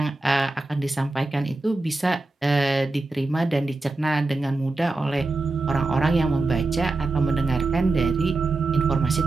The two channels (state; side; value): quieter; left; 3.1 dB